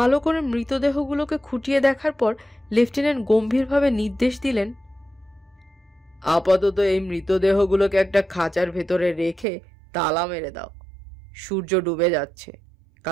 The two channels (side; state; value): left; drops out; at 9.5 s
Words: করে মৃতদেহগুলোকে খুঁটিয়ে দেখার পর লেফটেন্যান্ট গম্ভীরভাবে নির্দেশ দিলেন, আপাতত এই মৃতদেহগুলোকে একটা খাঁচার ভেতরে রেখে তালা মেরে দাও। সূর্য ডুবে যাচ্ছে,